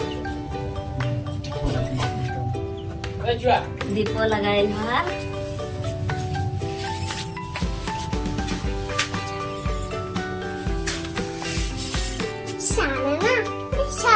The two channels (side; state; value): both; identical; correlation 1.00